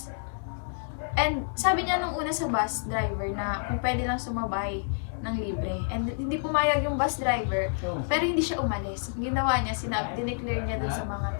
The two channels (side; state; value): right; silent; 59 dB below the other